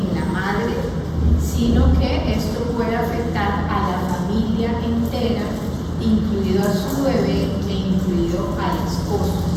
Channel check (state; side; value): identical; both; correlation 1.00